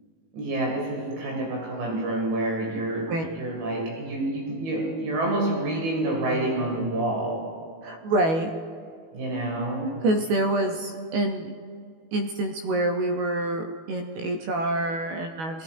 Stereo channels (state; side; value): late; left; 19 ms